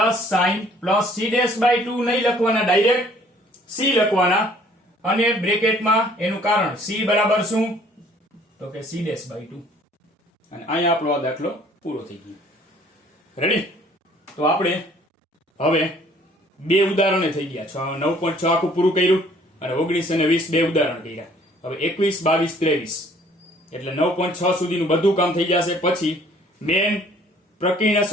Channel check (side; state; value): both; normal; correlation 0.57